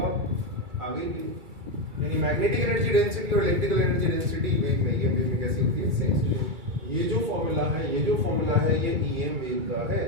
आप आगे की, यानी मैग्नेटिक एनर्जी डेंसिटी और इलेक्ट्रिकल एनर्जी डेंसिटी वेव में, ये वेव में कैसी होती है, सेम। ये जो फॉर्मूला है, ये जो फॉर्मूला है ये ईएम वेव का है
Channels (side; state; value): left; late; 2.3 ms